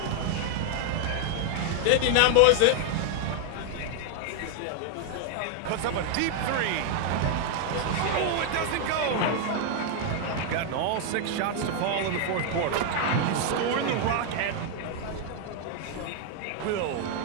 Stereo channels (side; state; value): both; different; correlation 0.00